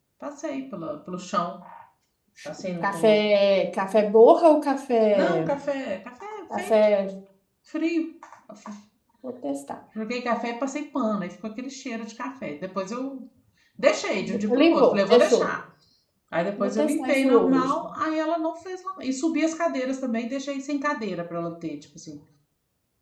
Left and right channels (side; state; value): both; identical; correlation 1.00